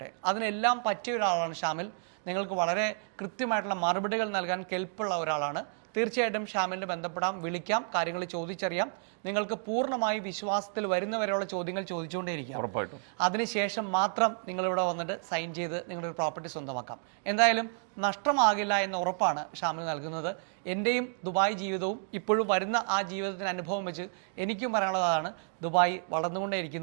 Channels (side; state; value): left; silent; 57 dB below the other